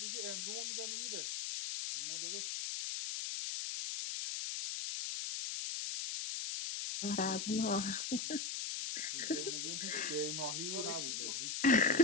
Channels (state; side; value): noise; left; hiss, 2 dB below the sound